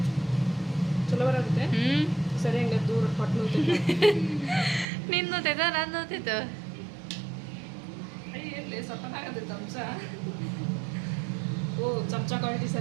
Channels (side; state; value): left; drops out; at 4.9 s